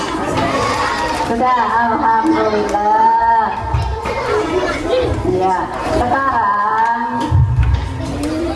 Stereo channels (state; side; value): identical; both; correlation 1.00